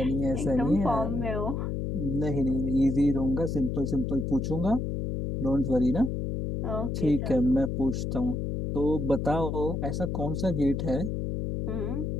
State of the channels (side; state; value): left; noise; hum, 2 dB below the sound